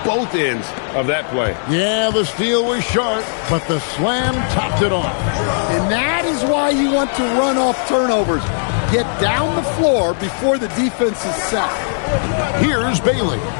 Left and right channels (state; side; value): silent; right; digital silence